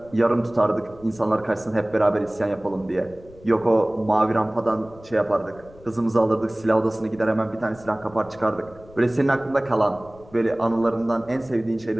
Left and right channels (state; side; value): noise; left; rumble, 23 dB below the sound